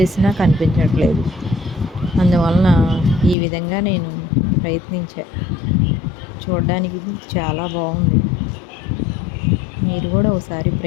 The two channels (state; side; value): drops out; right; at 3.4 s